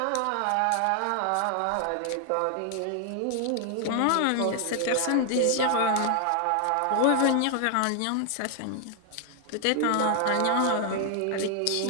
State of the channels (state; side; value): different; both; correlation 0.00